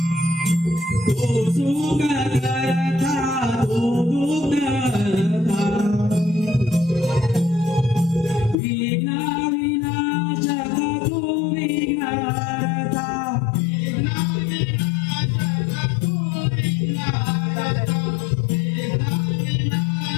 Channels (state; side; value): drops out; right; at 8.6 s